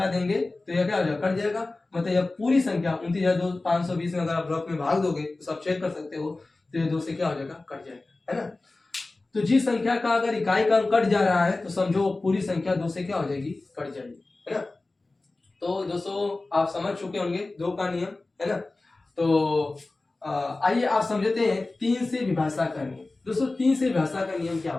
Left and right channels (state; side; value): quieter; right; 3.2 dB